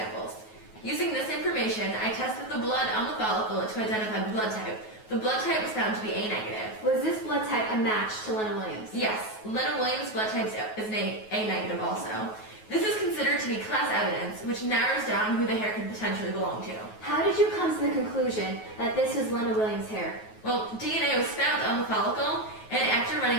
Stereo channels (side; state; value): right; late; 9.3 ms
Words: Using this information, I tested the blood on the follicle to identify the blood type. The blood type was found to be A negative. Was this blood type a match to Lena Williams? Yes, Lena Williams' blood type is A negative also. This is considered to be class evidence, which narrows down who the hair could potentially belong to. How did you come to the conclusion that this was Lena Williams' hair? Well, DNA was found on the follicle, and after